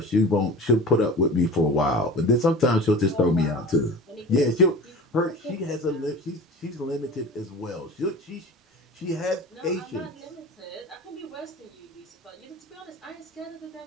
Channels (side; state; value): both; normal; correlation 0.36